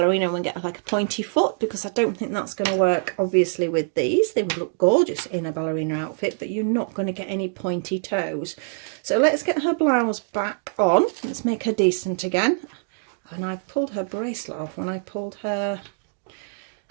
and we get like a pointy foot, because I don't think that's going to work obviously with these. They would look gorgeous in a ballerina outfit, but you're not going to get any pointy toes. So let's get her blouse back on. Let's make her decent again. And I've pulled her bracelet off when I pulled her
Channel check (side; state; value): left; silent; 62 dB below the other